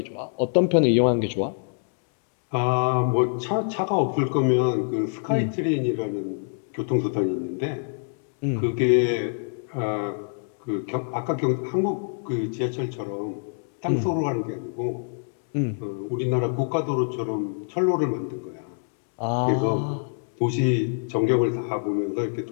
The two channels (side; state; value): right; silent; digital silence